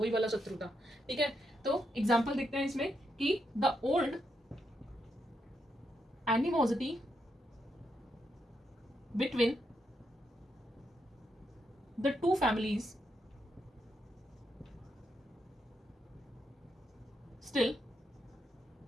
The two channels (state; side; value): normal; both; correlation 0.81